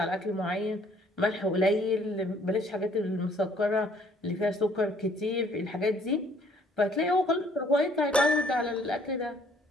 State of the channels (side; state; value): both; normal; correlation 0.61